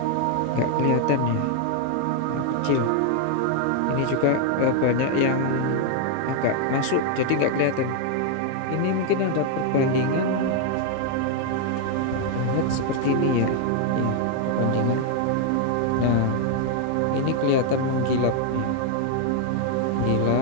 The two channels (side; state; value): both; different; correlation 0.00